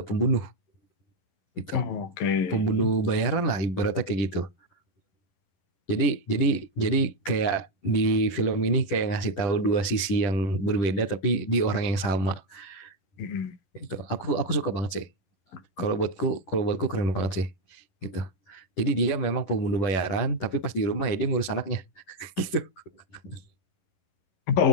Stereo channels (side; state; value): right; late; 11 ms